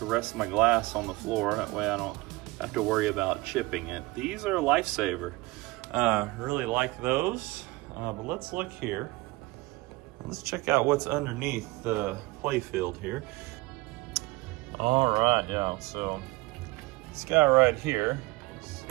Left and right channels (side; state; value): left; quieter; 21.7 dB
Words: my glass on the floor. That way I don't have to worry about chipping it. These are a lifesaver. Really like those. But let's look here. Let's check out what's underneath the play field here. All right, yeah, so this guy right here,